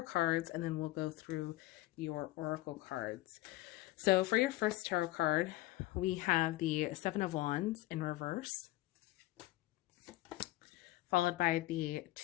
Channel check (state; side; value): quieter; right; 17.5 dB